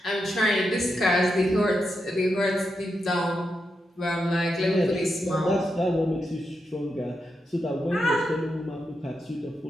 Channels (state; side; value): normal; both; correlation 0.86